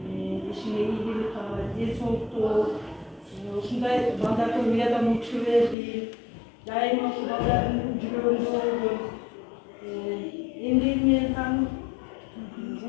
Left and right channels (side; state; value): right; drops out; at 5.8 s